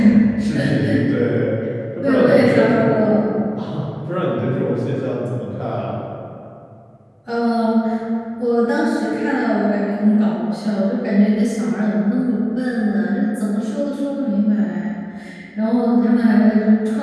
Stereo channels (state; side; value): identical; both; correlation 1.00